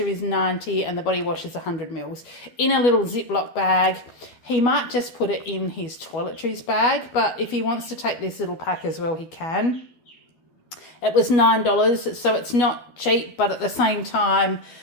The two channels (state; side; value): late; right; 12 ms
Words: is 90, and the body wash is 100 mils in a little Ziploc bag. He might just put it in his toiletries bag, but if he wants to take this little pack as well, he can. It was $9, so it's not cheap, but at the same time,